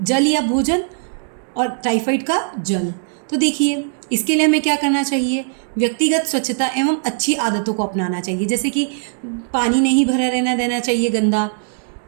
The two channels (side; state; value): left; silent; 66 dB below the other